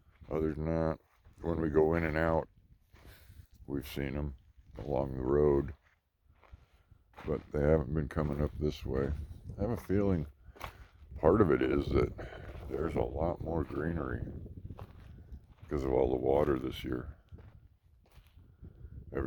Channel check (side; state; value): both; identical; correlation 1.00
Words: other than that, when we go in and out, we've seen them along the road. But they haven't been coming up this way. I have a feeling part of it is that there's a lot more greenery because of all the water this year.